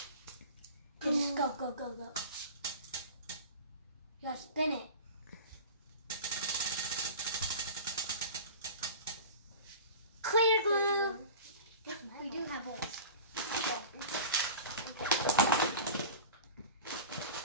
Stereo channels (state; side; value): inverted; both; correlation -0.36